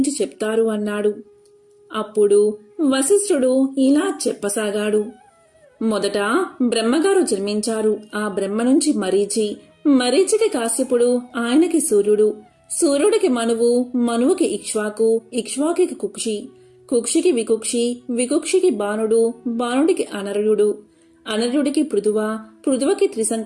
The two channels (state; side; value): identical; both; correlation 1.00